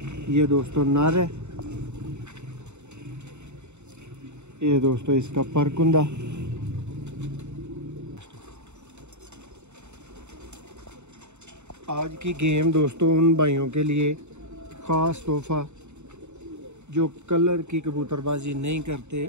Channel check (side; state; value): left; late; 0.82 ms